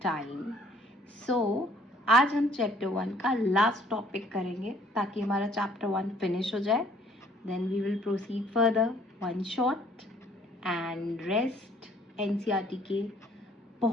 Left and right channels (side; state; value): both; normal; correlation 0.59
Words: So, आज हम चैप्टर 1 का लास्ट टॉपिक करेंगे ताकि हमारा चैप्टर 1 फिनिश हो जाए. Then we will proceed further. One shot and rest NCERT के